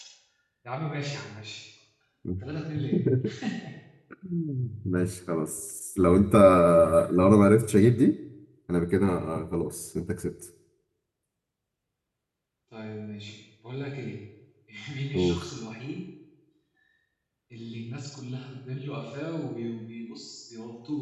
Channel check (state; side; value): identical; both; correlation 1.00